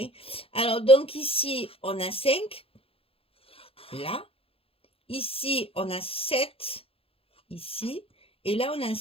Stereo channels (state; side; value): late; right; 0.27 ms